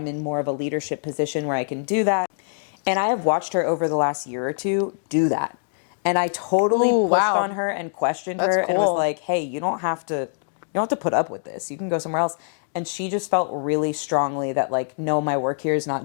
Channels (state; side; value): silent; right; digital silence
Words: in more of a leadership position where I can do that. And I have watched her over the last year or two do that. And I totally pushed on her and questioned her and was like, hey, you don't have to put up with this. You can go somewhere else. And she just felt really strongly that, like, no, my work here is